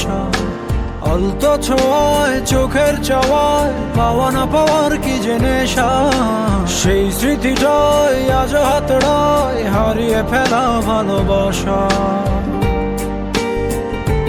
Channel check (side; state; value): both; identical; correlation 1.00